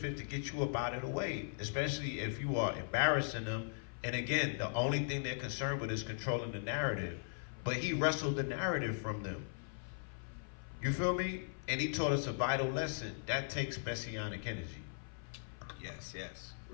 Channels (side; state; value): right; silent; 52 dB below the other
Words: to get you up out of the way, especially if you are embarrassing them. And again, the only thing they're concerned with is controlling the narrative. But he wrestled the narrative from them. You feel me? And he taught us a vital lesson. That takes messianic energy. Yes.